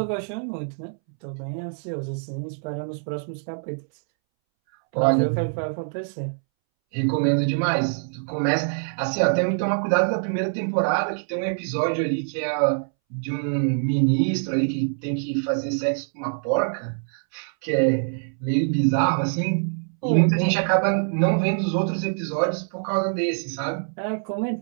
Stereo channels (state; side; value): silent; left; 62 dB below the other